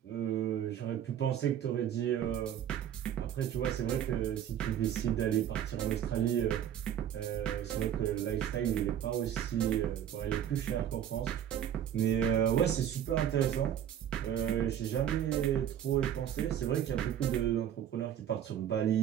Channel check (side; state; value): left; quieter; 10.1 dB